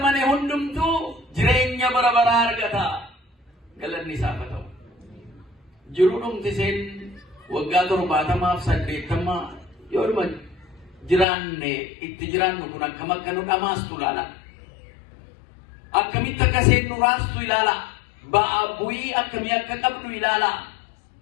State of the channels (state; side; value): drops out; right; at 11.2 s